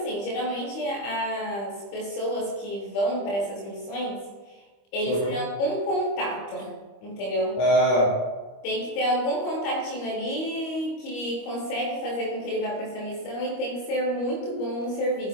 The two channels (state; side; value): late; right; 25 ms